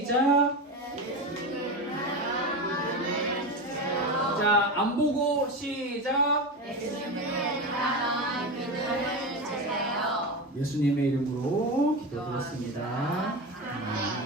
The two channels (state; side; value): normal; both; correlation 0.21